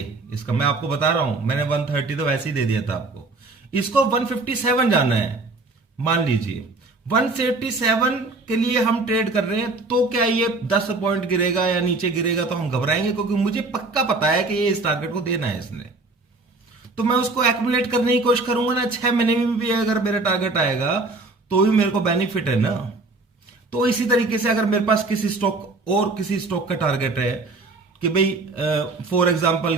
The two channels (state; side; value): quieter; left; 3.4 dB